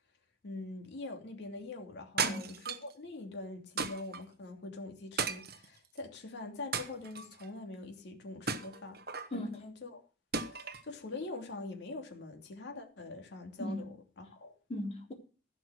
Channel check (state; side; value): normal; both; correlation 0.13